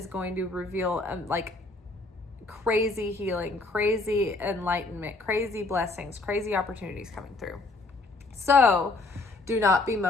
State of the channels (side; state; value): right; quieter; 3.4 dB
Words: going to reveal crazy healing, crazy enlightenment, crazy blessings, crazy opportunities coming through. So do not